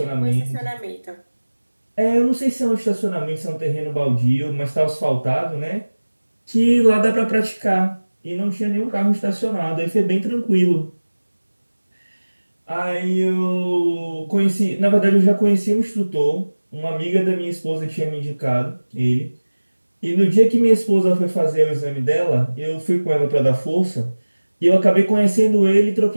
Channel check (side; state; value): both; inverted; correlation -1.00